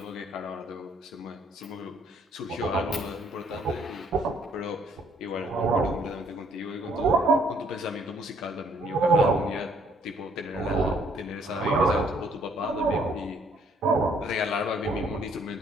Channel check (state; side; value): normal; both; correlation 0.65